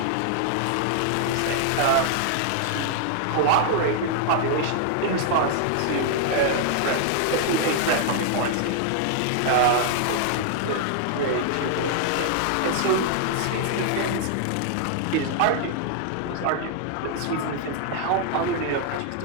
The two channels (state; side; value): different; both; correlation 0.00